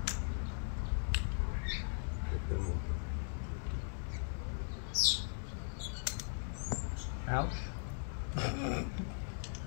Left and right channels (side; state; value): right; silent; digital silence